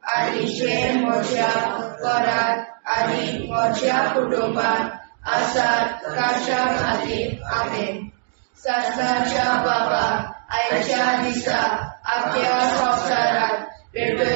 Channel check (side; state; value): left; silent; 65 dB below the other